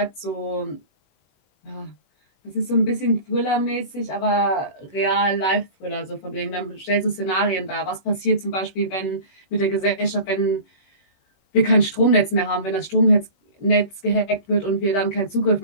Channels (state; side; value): late; right; 20 ms